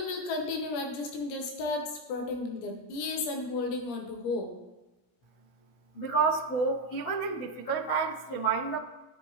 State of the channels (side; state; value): right; late; 17 ms